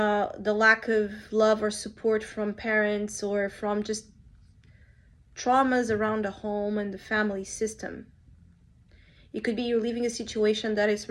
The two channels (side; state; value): both; identical; correlation 1.00